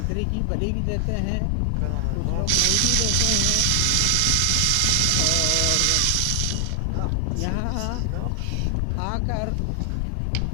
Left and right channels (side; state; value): both; different; correlation 0.00